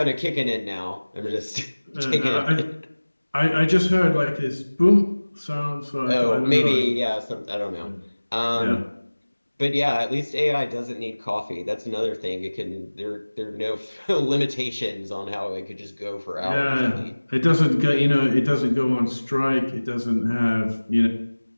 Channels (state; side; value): inverted; both; correlation -1.00